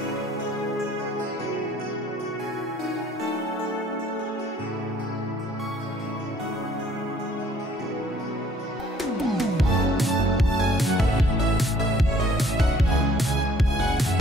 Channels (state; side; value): normal; both; correlation 0.59